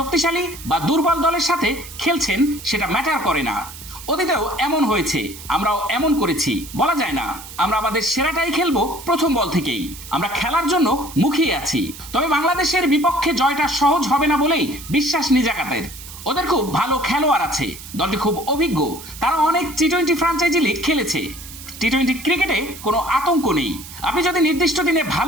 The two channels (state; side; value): noise; right; hiss, 14 dB below the sound